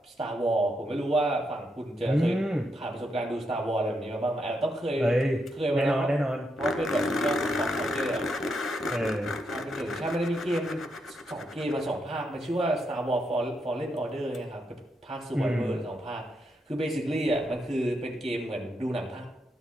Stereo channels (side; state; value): both; normal; correlation 0.81